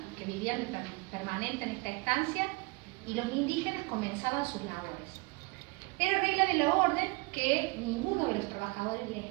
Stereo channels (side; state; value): left; quieter; 27.2 dB